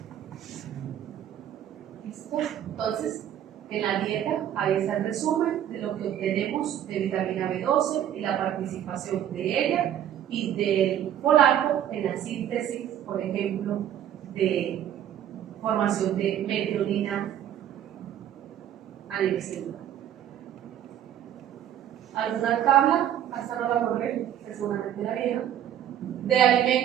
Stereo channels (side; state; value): left; quieter; 10.6 dB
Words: ¿Listo? Entonces, en la dieta, ahí está el resumen de lo que obtenemos de vitamina B12 y la participación de ella y del folato en la síntesis, por ejemplo, de formación de metionina a nivel celular. ¿Alguna tabla? Hasta no la correr, seguramente la vieja, de